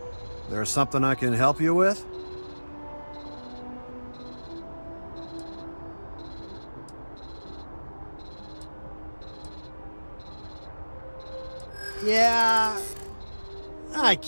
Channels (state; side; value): inverted; both; correlation -1.00